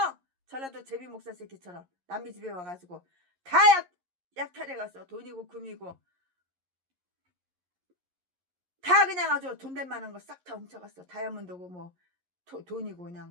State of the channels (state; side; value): late; left; 11 ms